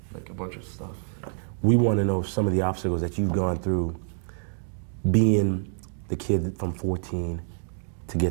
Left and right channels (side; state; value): left; silent; 59 dB below the other